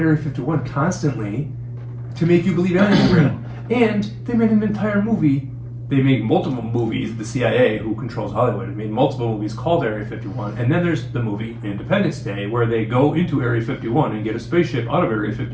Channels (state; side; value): identical; both; correlation 1.00